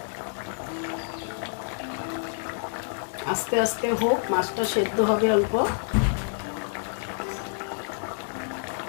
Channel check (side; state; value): right; silent; 60 dB below the other